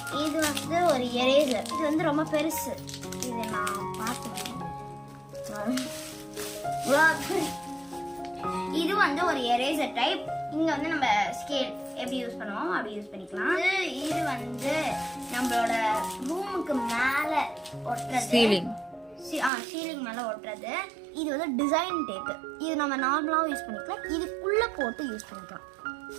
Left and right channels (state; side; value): drops out; left; at 19.5 s